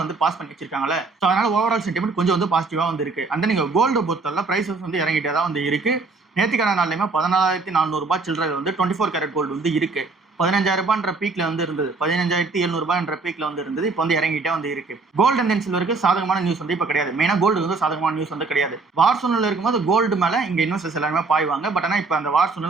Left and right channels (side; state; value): left; quieter; 4.0 dB